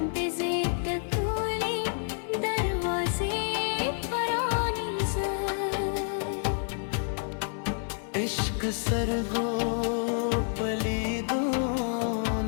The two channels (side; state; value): right; silent; 59 dB below the other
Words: दिज़ित तूली दरवाज़े परानी इश्क सरगो पलीदो